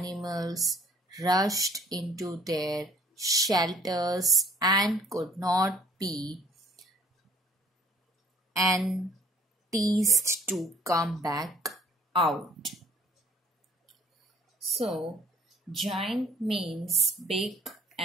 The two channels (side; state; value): both; normal; correlation 0.56